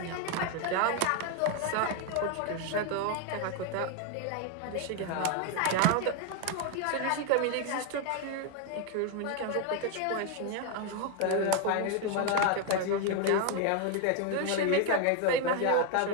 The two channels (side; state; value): both; different; correlation 0.01